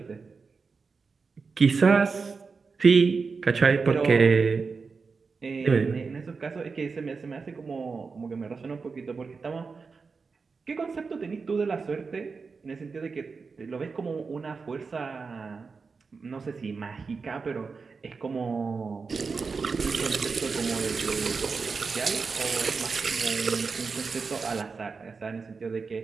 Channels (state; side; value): quieter; left; 4.8 dB